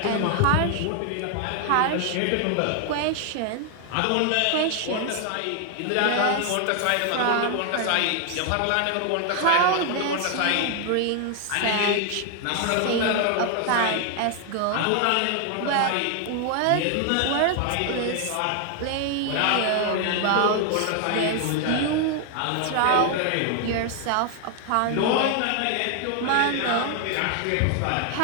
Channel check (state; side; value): different; both; correlation 0.00